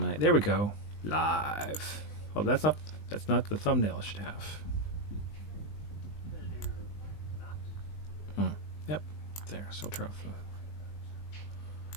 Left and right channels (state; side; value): late; right; 19 ms